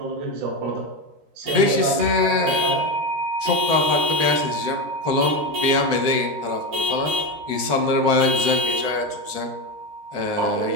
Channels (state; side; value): late; left; 13 ms